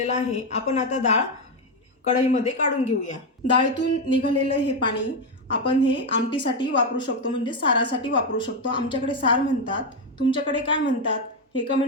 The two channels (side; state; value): both; normal; correlation 0.07